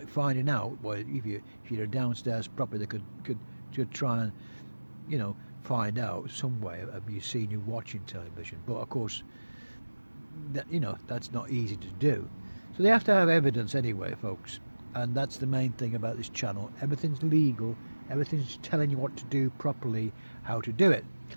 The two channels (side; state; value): both; inverted; correlation -1.00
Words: finding out. Well, if you're downstairs properly, they could try and, you know, find out some way of you seeing you watching television. But of course, that, you know, that's not easy to do. So they have to have evidence anyway, folks. And that's the main thing about this channel. Everything's legal. Everything's telling you what to do properly, how to do it.